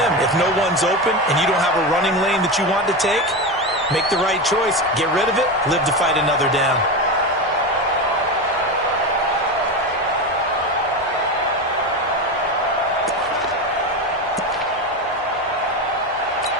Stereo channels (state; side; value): normal; both; correlation 0.19